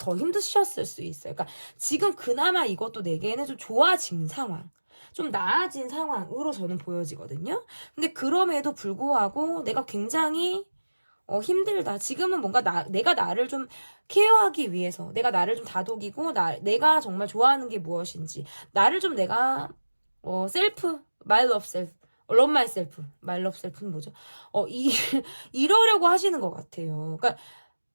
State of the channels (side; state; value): both; inverted; correlation -1.00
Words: 힘드셨을 수 있어요. 그러니까 지금 그나마 이것도 내게는 좀 좋아진 상황. 좀 나아진 상황으로 저는 보여지거든요. 근데 그럼에도 불구하고 내가 굉장히 힘들다. 지금은 뭔가 내가 나를 좀 케어하기 위해서 내가 나를 좀 다독이고 내가 정말 좋아하는 게 무엇인지 나를 좀 내가 my love self love myself my love self는 뭐죠? 이러려고 하시는 것 같아요. 그러니까